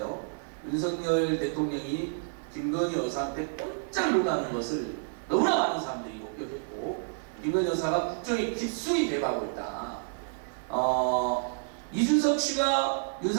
윤석열 대통령이 김건희 여사한테 꼼짝 놀라는 것을 너무나 많은 사람들이 목격했고 김건희 여사가 국정에 깊숙이 개입하고 있다. 이준석 씨가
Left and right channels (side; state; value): left; silent; digital silence